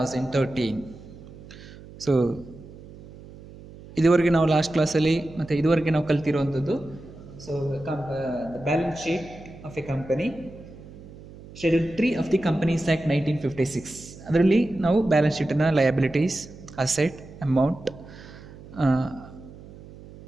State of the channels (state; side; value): noise; right; hum, 18 dB below the sound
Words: So ಇದುವರೆಗೆ ನಾವು last ಕ್ಲಾಸಲ್ಲಿ ಮತ್ತು ಇದುವರೆಗೆ ನಾವು ಕಲ್ತಿರುವಂಥದ್ದು balance sheet of a company schedule 3 of the companies act 1956. ಅದರಲ್ಲಿ ನಾವು balance ಶೀಟನ್ನು ಲಯಬಿಲಿಟೀಸ್, ಅಸೆಟ್, ಅಮೌಂಟ್